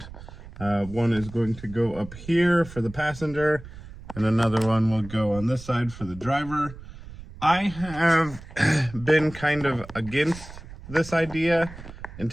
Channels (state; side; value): noise; right; rumble, 15 dB below the sound